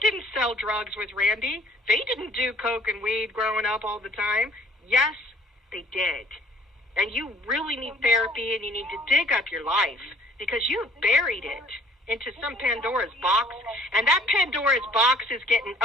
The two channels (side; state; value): both; normal; correlation 0.56